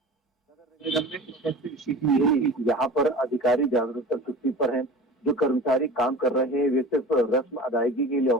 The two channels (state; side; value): normal; both; correlation 0.36